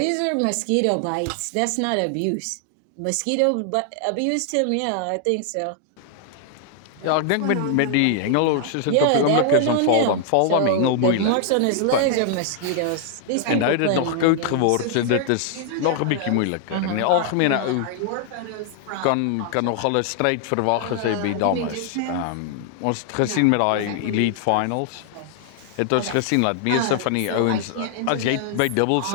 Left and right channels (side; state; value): both; different; correlation 0.00